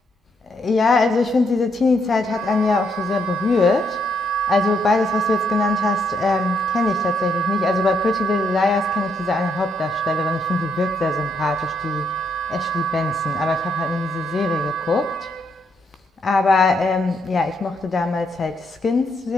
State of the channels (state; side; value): normal; both; correlation 0.76